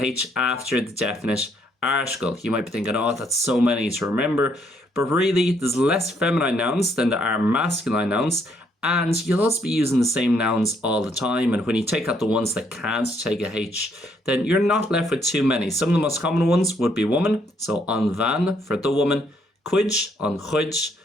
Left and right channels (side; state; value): both; normal; correlation 0.70